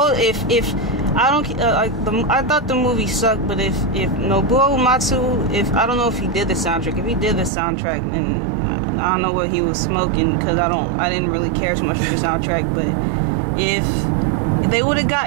I thought the movie sucked, but if Nobuo Uematsu, I don't know if he did the soundtrack. If he did the soundtrack, then I don't know what he was smoking, because I didn't really care so much for the soundtrack. But if they would have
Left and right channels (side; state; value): left; drops out; at 7.5 s